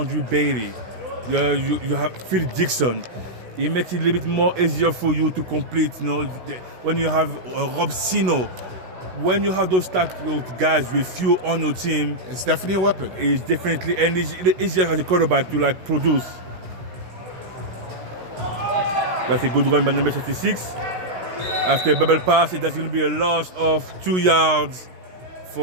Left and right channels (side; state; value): left; late; 16 ms